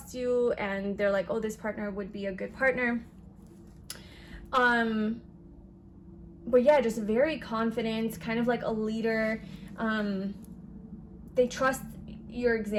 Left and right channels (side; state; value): both; identical; correlation 1.00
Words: you and they're like, oh, this partner would be a good partner. But yeah, just very confident, kind of like a leader. They trust your